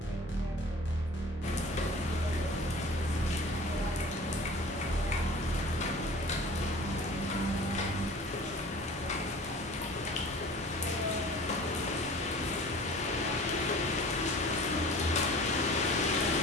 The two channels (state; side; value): normal; both; correlation 0.43